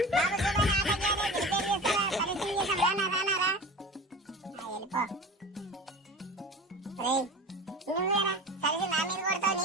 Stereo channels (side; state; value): both; normal; correlation 0.35